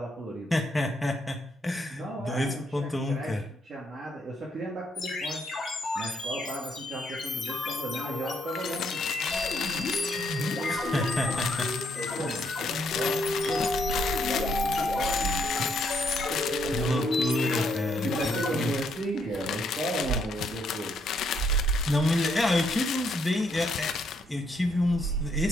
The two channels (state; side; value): normal; both; correlation 0.73